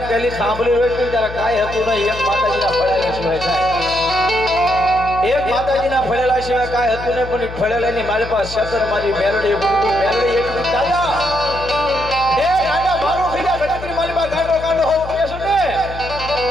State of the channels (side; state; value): left; noise; hum, 12 dB below the sound